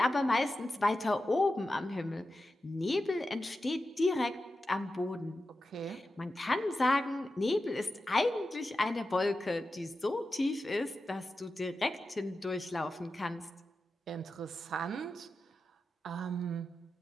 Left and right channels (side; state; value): both; normal; correlation 0.92